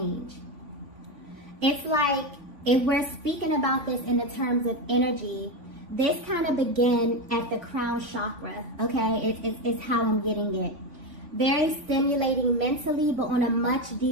It's like, if we're speaking about this in the terms of energy, this kind of began at the crown chakra, okay? It's how I'm getting it. Very stimulating mentally, but on a much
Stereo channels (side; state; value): left; late; 3.5 ms